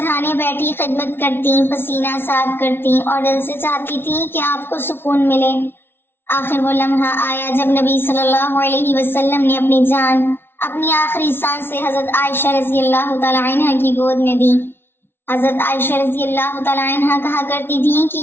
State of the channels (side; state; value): right; late; 0.11 ms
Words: بیٹھی خدمت کرتی، پسینہ صاف کرتی اور دل سے چاہتی تھی کہ آپ کو سکون ملے۔ آخر وہ لمحہ آیا جب نبی صلی اللہ علیہ وسلم نے اپنی جان اپنی آخری سانسیں حضرت عائشہ رضی اللہ تعالی عنہ کی گود میں دی۔ حضرت عائشہ رضی اللہ تعالی عنہ کہا کرتی تھی کہ